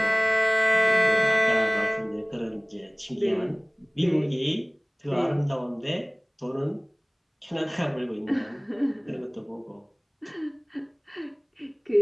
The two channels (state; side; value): identical; both; correlation 1.00